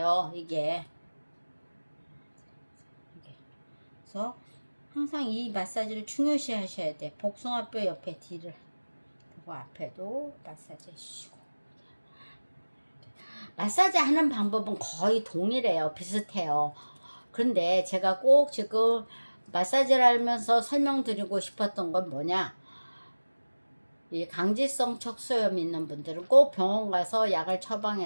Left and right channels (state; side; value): inverted; both; correlation -1.00